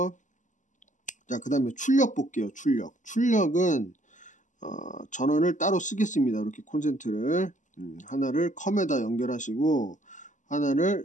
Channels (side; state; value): right; late; 0.37 ms